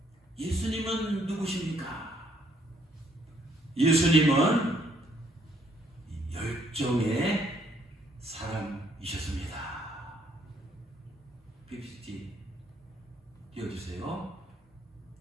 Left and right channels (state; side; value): normal; both; correlation 0.68